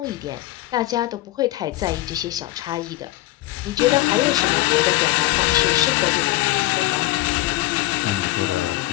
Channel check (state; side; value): quieter; right; 17.5 dB